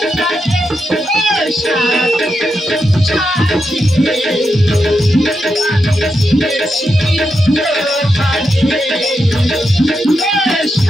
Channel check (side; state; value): both; normal; correlation 0.85